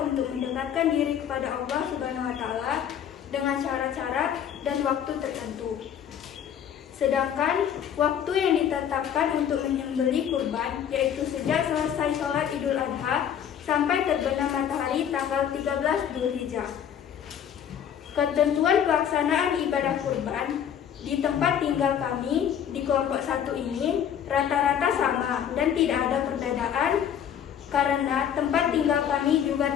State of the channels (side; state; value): right; quieter; 9.0 dB